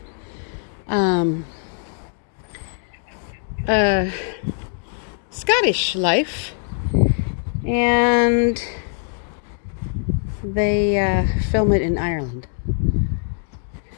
Scottish life, and they film it in Ireland.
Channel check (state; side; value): silent; right; 59 dB below the other